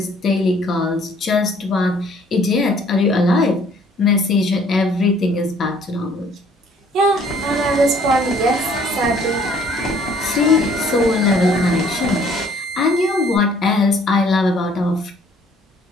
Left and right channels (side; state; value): both; normal; correlation 0.59